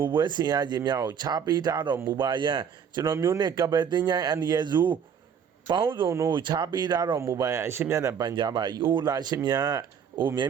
ုပွဲဆင်ရခြင်းများကိုခြားပေးထားတော်မူပါယံကျွန်တော်မျိုးနှင့်ကပယ်တင်ញိုင်းအန္တရာယ်စုပေါင်းစုံတို့ခြားပေးထားတော်မူပါယံအရှင်မြတ်နဲ့ပန်ကြားပါ၏အိုလာရှင်မြတ်အိုမြဲ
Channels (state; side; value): quieter; left; 7.5 dB